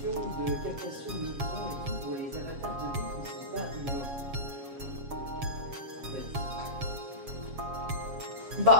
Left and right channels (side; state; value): left; late; 7.3 ms